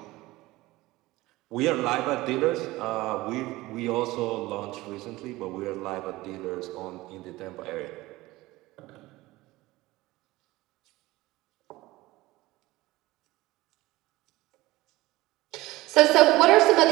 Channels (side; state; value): left; quieter; 19.0 dB